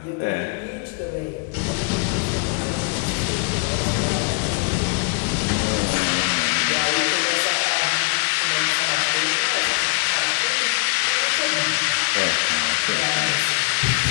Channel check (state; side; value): quieter; right; 35.5 dB